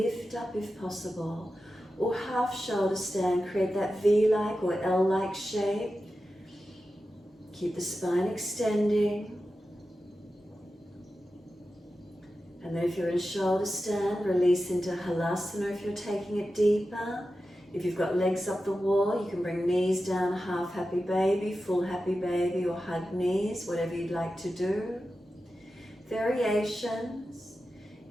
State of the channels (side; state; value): both; normal; correlation 0.92